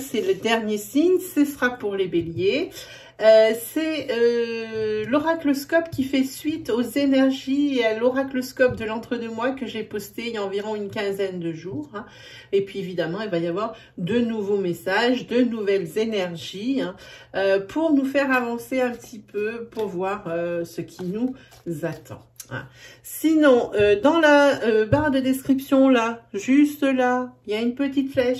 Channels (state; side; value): identical; both; correlation 1.00